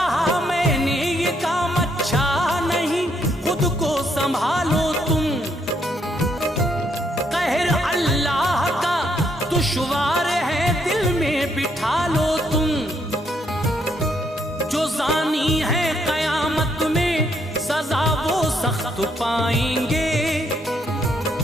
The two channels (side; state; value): both; normal; correlation 0.73